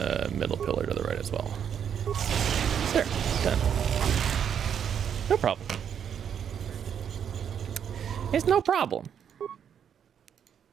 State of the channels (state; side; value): quieter; left; 8.3 dB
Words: middle pillar to the right as well. There, done. No problem. It's no problem.